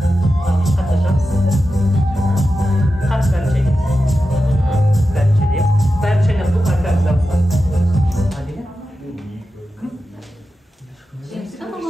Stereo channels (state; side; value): normal; both; correlation 0.91